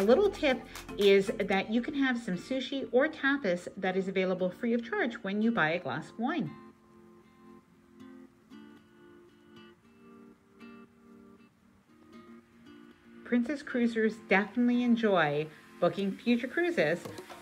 little tip is that you can have some sushi or tapas that is available free of charge when you buy a glass of wine. Princess cruisers definitely enjoy booking future cruises,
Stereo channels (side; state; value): both; identical; correlation 1.00